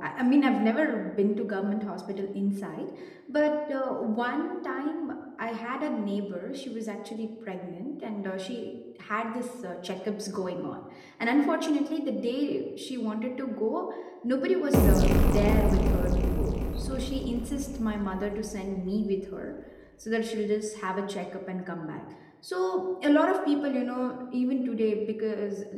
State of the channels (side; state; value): both; identical; correlation 1.00